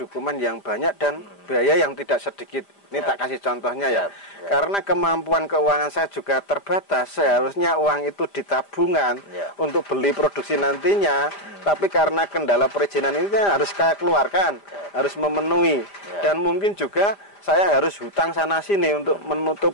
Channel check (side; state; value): right; late; 5.0 ms